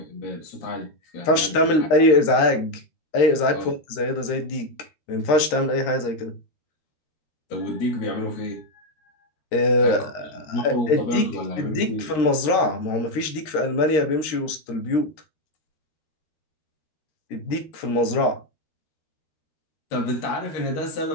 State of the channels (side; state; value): right; late; 13 ms